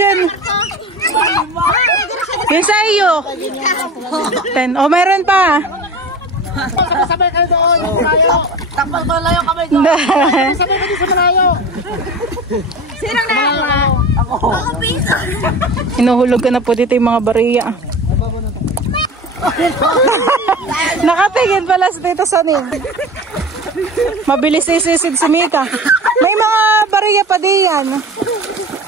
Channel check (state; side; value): normal; both; correlation 0.34